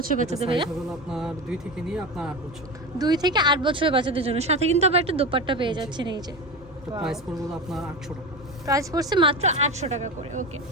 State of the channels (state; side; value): normal; both; correlation 0.23